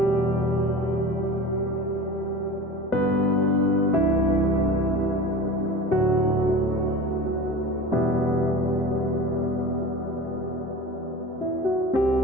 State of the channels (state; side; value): normal; both; correlation 0.34